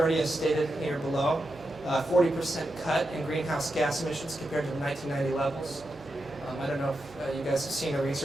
as stated here below. 40% cut in greenhouse gas emissions compared to the 1990 levels. I don't know if you guys have seen the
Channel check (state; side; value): noise; right; hum, 23 dB below the sound